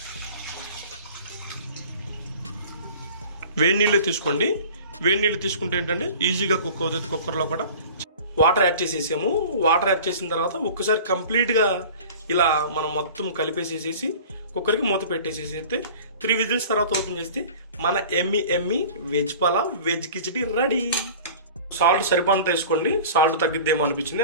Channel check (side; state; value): both; inverted; correlation -0.41